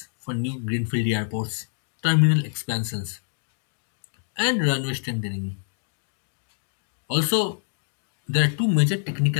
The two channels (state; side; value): silent; right; digital silence